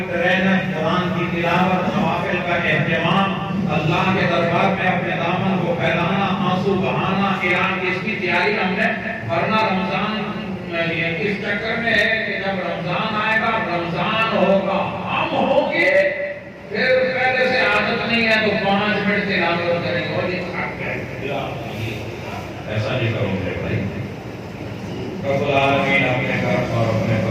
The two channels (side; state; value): both; identical; correlation 1.00